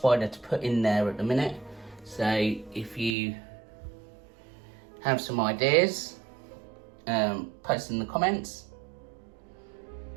to put in there at the minute, so if you have some ideas, post in the comments.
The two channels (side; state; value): left; drops out; at 3.2 s